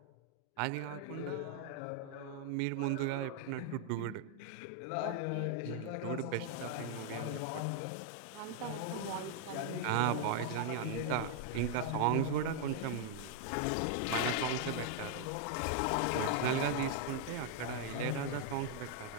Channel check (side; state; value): both; different; correlation 0.00